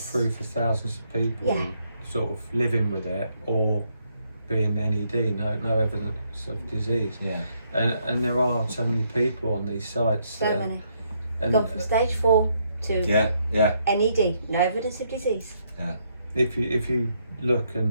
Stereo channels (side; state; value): both; inverted; correlation -0.74